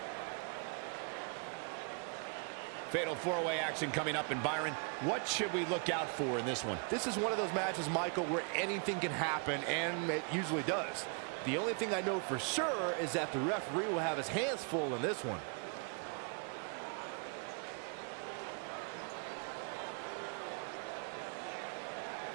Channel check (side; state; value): left; quieter; 38.9 dB